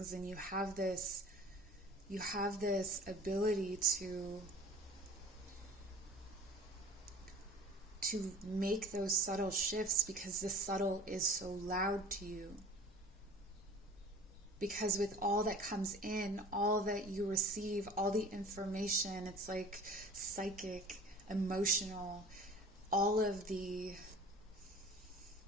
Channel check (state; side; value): normal; both; correlation 0.44